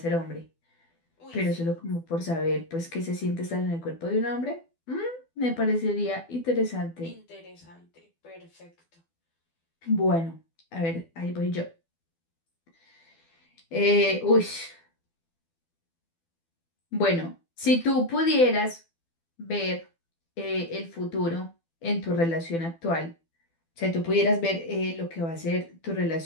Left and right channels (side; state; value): right; late; 12 ms